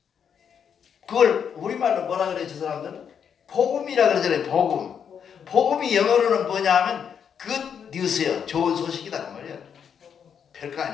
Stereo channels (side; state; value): right; quieter; 7.6 dB